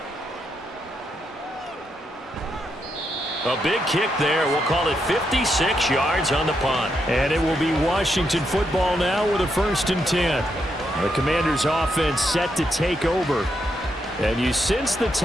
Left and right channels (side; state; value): both; normal; correlation 0.81